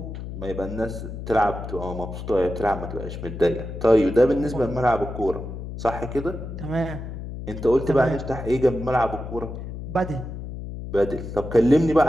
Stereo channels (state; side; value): noise; left; hum, 8 dB below the sound